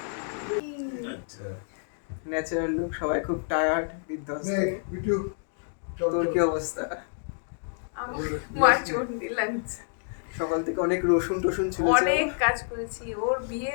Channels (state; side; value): silent; right; digital silence